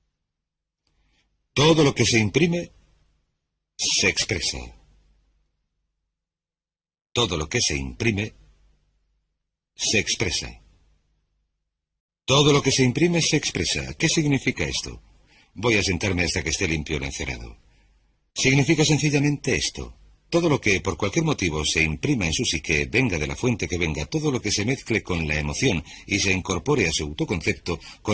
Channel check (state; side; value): identical; both; correlation 1.00